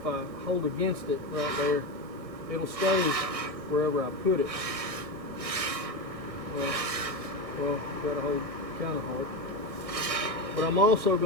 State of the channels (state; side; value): late; left; 1.6 ms